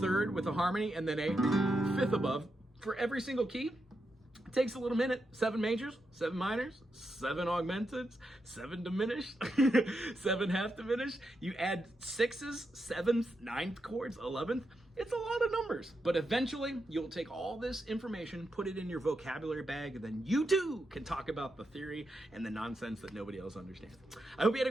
third with a harmony, and then a fifth above for every single key. It takes a little minute. 7 majors, 7 minors, 7 augmenteds, 7 diminished, 7 half diminished. You add 6s, 7th, 9th chords, 11th. It's a lot of numbers. But eventually, you'll take all this information, put it in your vocabulary bag, and then you too can talk about the theory and the nonsense that nobody else understands. I hope you had a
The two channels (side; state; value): both; normal; correlation 0.85